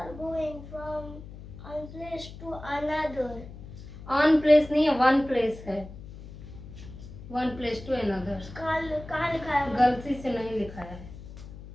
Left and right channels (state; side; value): noise; left; hum, 14 dB below the sound